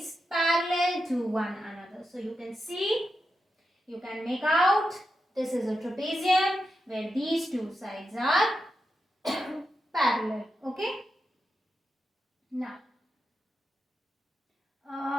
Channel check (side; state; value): both; normal; correlation 0.88